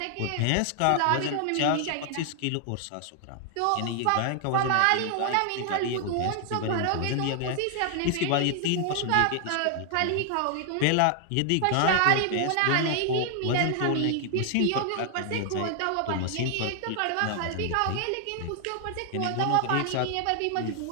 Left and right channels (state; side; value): different; both; correlation 0.00